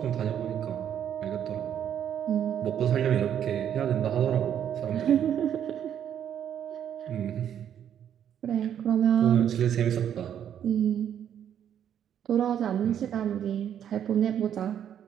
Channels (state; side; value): quieter; left; 9.5 dB